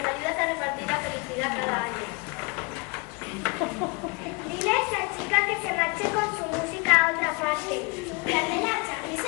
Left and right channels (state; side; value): quieter; right; 29.4 dB